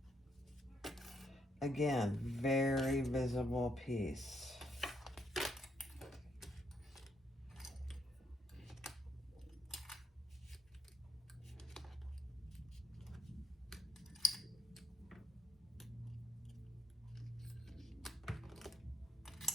Again, very visible piece.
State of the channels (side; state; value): both; normal; correlation 0.74